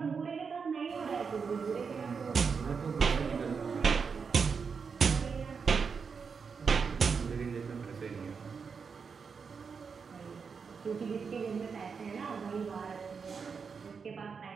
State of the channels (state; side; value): quieter; left; 5.7 dB